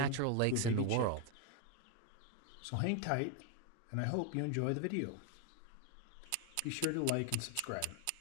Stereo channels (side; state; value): both; different; correlation 0.01